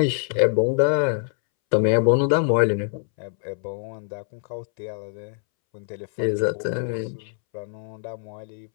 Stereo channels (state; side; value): silent; right; 62 dB below the other